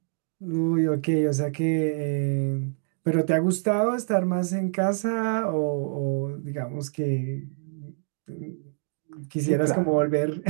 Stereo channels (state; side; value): silent; left; digital silence